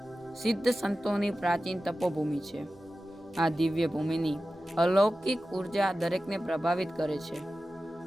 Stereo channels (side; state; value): both; normal; correlation 0.94